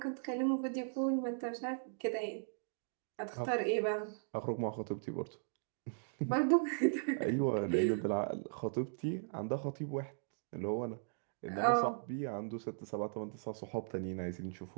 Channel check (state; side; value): silent; left; digital silence